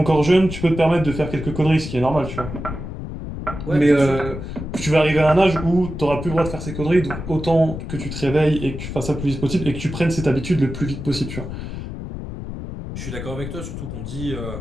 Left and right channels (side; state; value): left; noise; rumble, 8 dB below the sound